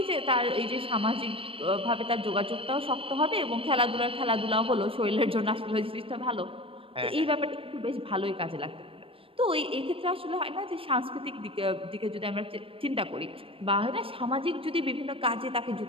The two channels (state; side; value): late; left; 0.26 ms